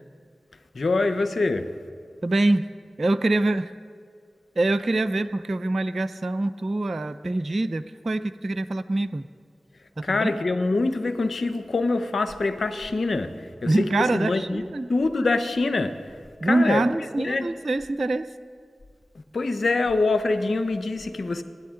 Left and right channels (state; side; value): normal; both; correlation 0.93